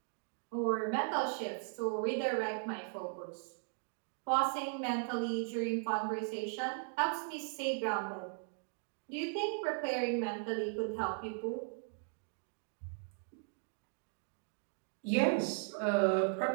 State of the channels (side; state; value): left; silent; 53 dB below the other